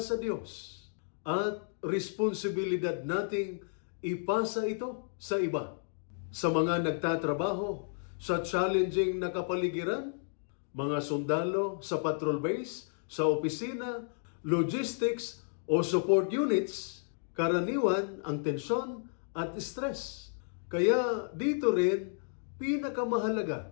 Diyos at responsibilidad nating ipasa ito sa iba. Sa mga nagtatrabaho sa challenging na kapaligiran, mga sundalo sa patrol base, sa opisina, logistics o support units, karaniwan ang tensyon at stress. Kaya dito rin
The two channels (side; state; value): right; silent; digital silence